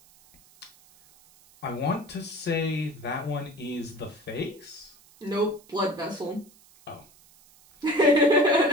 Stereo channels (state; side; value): noise; right; hiss, 27 dB below the sound